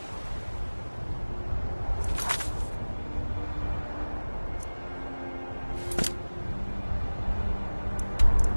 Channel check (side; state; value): both; inverted; correlation -1.00